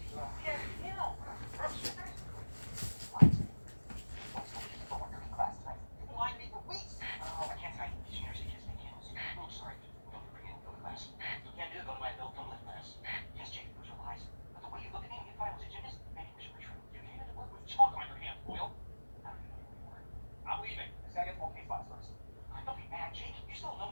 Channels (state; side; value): inverted; both; correlation -1.00